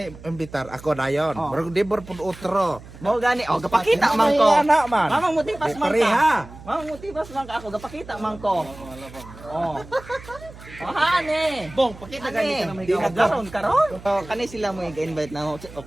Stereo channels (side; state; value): right; noise; hum, 18 dB below the sound